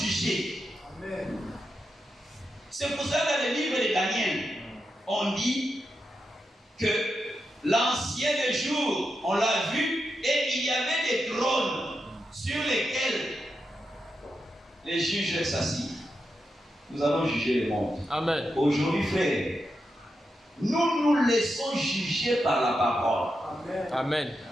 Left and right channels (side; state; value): both; normal; correlation 0.87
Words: Amen. C'est pour ça que dans le livre de Daniel, on dit que l'ancien des jours, on l'a vu, et il y avait des trônes sur lesquels les juges s'assient. Nous allons juger le monde. Amen. Aujourd'hui, frère, nous nous laissons juger par la parole. Amen.